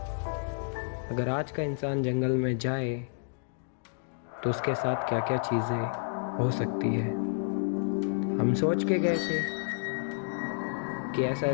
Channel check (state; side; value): silent; right; digital silence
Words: अगर आज का इंसान जंगल में जाए तो उसके साथ क्या क्या चीज़ें हो सकती है। हम सोच के गए थे कि ऐसा